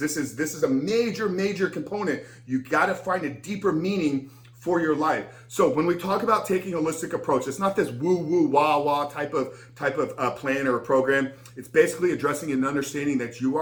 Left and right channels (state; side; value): identical; both; correlation 1.00